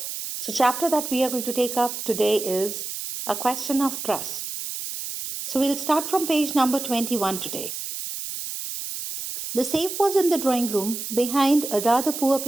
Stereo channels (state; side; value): noise; right; hiss, 6 dB below the sound